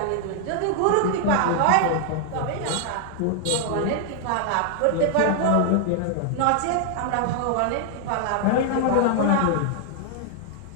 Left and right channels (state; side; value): different; both; correlation 0.00